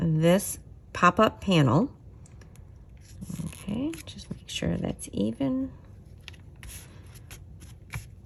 pop-up panel. Okay, just make sure that's even.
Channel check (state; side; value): identical; both; correlation 1.00